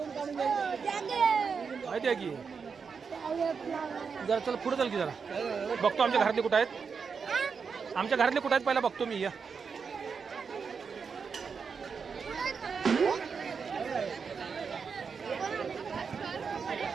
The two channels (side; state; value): left; quieter; 5.7 dB